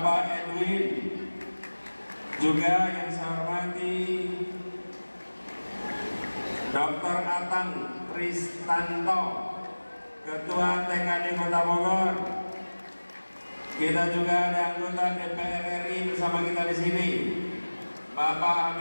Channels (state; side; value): inverted; both; correlation -1.00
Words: Edwin. Juga yang saya hormati Dr. Atang Tristanto, Ketua TKD Kota Bogor. Kita juga ada anggota DPR RI bersama kita di sini, Bapak